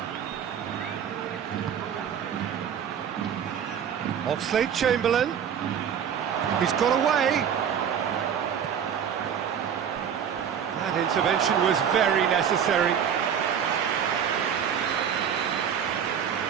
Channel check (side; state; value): left; quieter; 8.2 dB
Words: Oxlade-Chamberlain. He's got away. That intervention was very necessary.